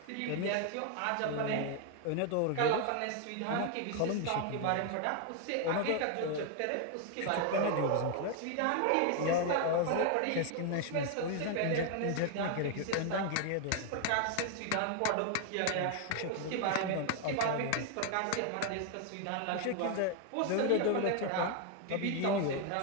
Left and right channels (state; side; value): different; both; correlation 0.01